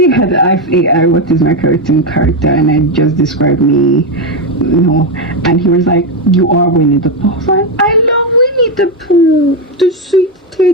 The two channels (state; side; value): normal; both; correlation 0.08